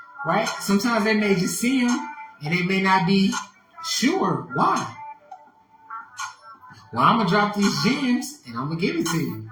right? Sometimes they may just see him and they may not be sure why. Well, I'm going to drop these gems and I'm going to give it to you.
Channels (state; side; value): identical; both; correlation 1.00